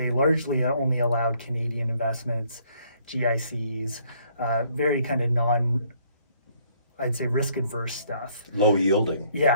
largely only allowed Canadian investments, GICs, very kind of I'd say risk-adverse stuff. Low yielding.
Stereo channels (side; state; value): both; inverted; correlation -0.65